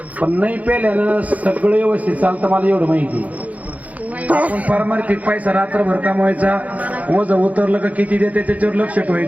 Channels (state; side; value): late; left; 0.071 ms